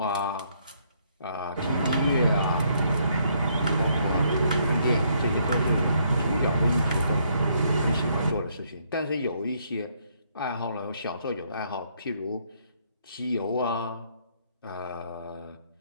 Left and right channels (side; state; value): both; inverted; correlation -0.70